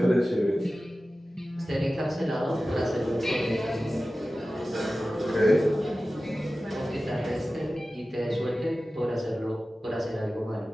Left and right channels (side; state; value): both; normal; correlation 0.95